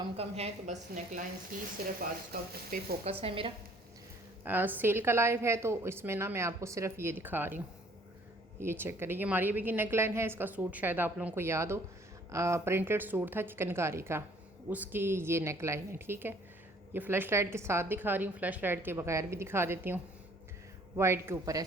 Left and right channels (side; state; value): both; normal; correlation 0.58